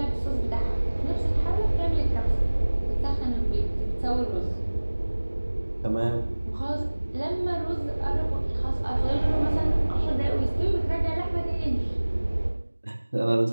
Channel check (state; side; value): inverted; both; correlation -1.00